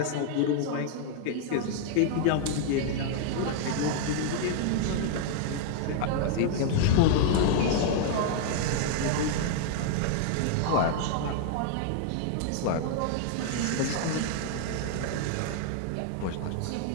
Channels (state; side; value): different; both; correlation 0.00